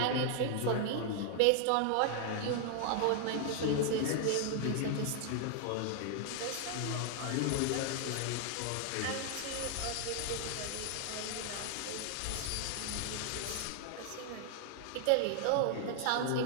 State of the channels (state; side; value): different; both; correlation 0.00